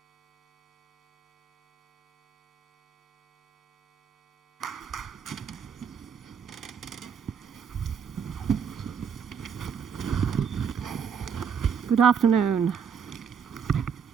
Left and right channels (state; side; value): quieter; left; 7.0 dB